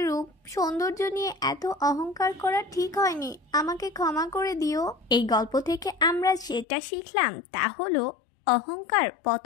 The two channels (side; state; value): right; drops out; at 6.7 s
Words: রূপ সৌন্দর্য নিয়ে এত অহংকার করা ঠিক হয়নি, আমাকে ক্ষমা করে দিও। এই গল্প থেকে আমরা যেটা শিখলাম তা হলো, অহংকার